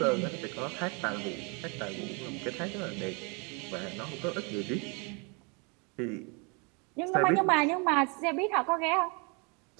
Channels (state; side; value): quieter; left; 32.2 dB